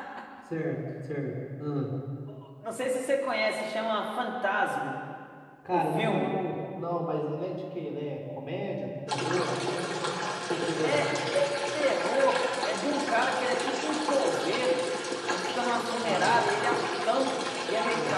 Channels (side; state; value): both; identical; correlation 1.00